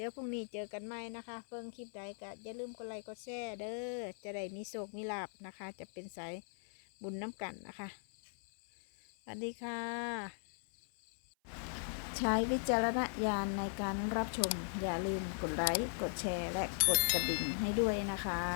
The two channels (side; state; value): right; silent; 52 dB below the other